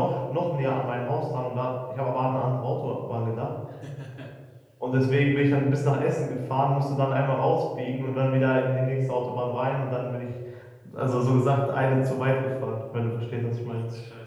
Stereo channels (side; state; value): both; identical; correlation 1.00